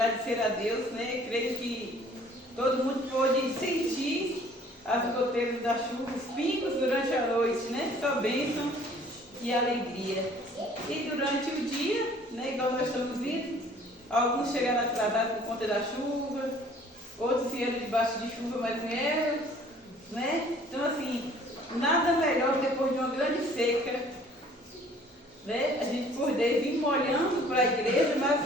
a Deus, né? Creio que todo mundo pôde sentir as goteiras da chuva, os pingos durante a noite, né? Só bênção e alegria. E durante o dia, né? Igual nós estamos vendo, alguns chegaram atrasados por conta da chuva, outros vieram debaixo de chuva, mas vieram, né? Então, assim, nada melhor depois de uma grande seca, né? A gente poder vir molhando para a igreja,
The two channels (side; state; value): both; normal; correlation 0.54